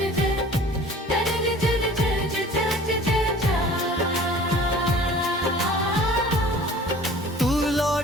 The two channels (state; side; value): normal; both; correlation 0.46